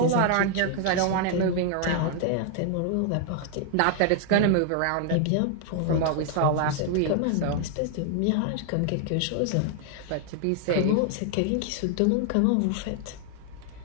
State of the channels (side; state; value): both; different; correlation 0.00